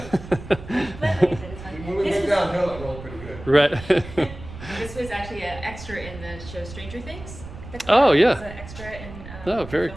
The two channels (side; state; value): right; noise; rumble, 14 dB below the sound